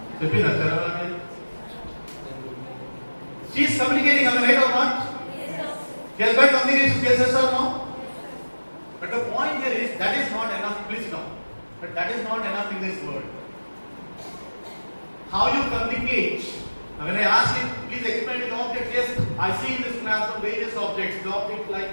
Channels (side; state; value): both; inverted; correlation -1.00